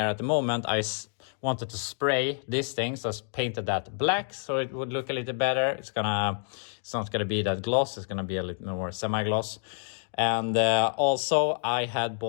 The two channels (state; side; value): silent; right; 59 dB below the other